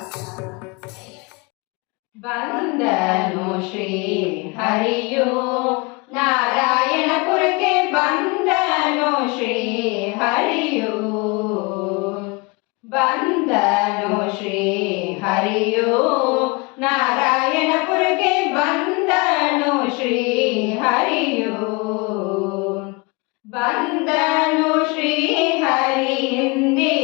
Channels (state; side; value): quieter; right; 27.6 dB